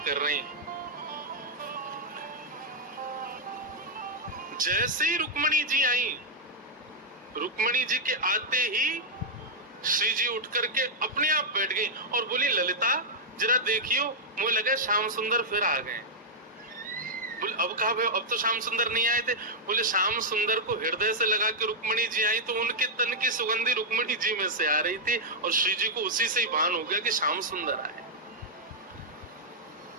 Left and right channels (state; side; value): normal; both; correlation -0.04